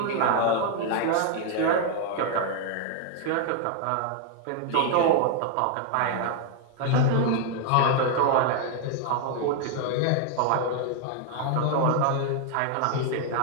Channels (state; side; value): different; both; correlation 0.00